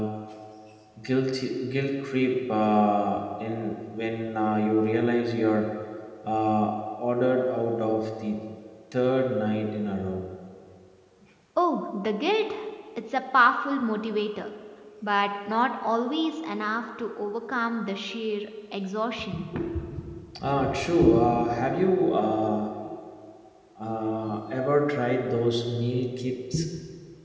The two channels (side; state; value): both; identical; correlation 1.00